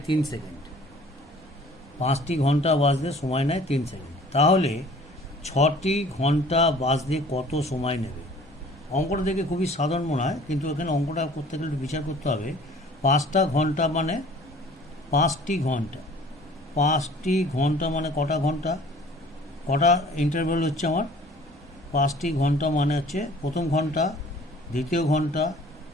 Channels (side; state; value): both; normal; correlation 0.50